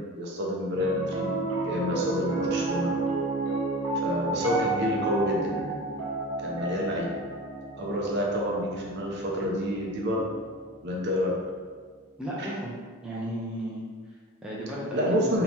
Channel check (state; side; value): normal; both; correlation 0.33